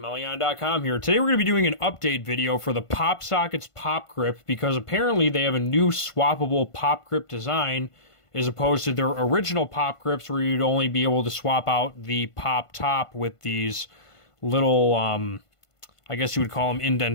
here. Today we're going to be doing an update video for the PopSockets Pop Grip because apparently they have a new swappable pop grip design as opposed to their original pop grips where you'd only be able to swap out the pop top with these little, I guess you would call them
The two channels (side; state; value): right; late; 1.5 ms